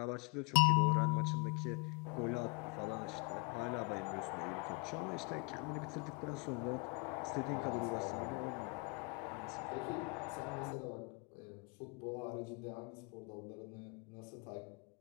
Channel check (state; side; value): quieter; right; 32.2 dB